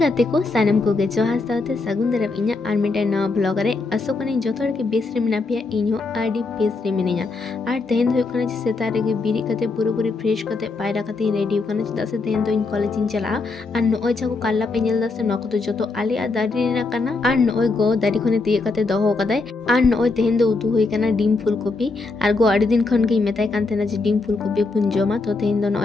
को सानम को गे जोहार साथे सगुन दरब इन्या आर मिटे नवा ब्लॉग रे असोकनी जोथोर के बेस रे मिना पिया इन्हो आडी बेस रे मिनिया आर तेहेन दो कने सेता रे गे बिरी कते पूरी फ्रेश कते पायरा कते रेडी कने चदा से तेहेन दो इन कॉलेज इन चला आर नोय जाको काल्ला पे नेल दासे नको तो जोतो आली आ दारी रेना कना आर नोय गो दारी खने तिये कते दोहो कदाय आर नोय तेहेन दो उतु होई कना dim full copy are go आडी दिन खन के मेताय कान तेना जे डिम फुल कॉपी पुन जमा तो तेहेन दो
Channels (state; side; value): quieter; right; 3.7 dB